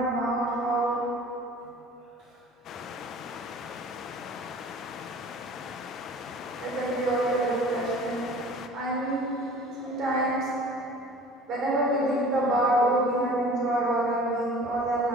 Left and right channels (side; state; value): both; normal; correlation 0.45